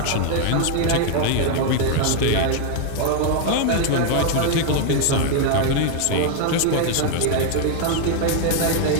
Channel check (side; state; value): both; different; correlation 0.00